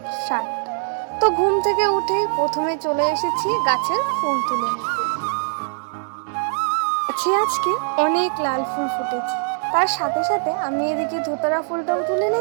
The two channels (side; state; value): left; silent; digital silence